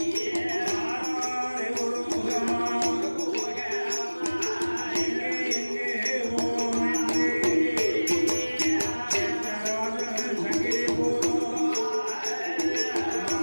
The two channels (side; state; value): both; inverted; correlation -1.00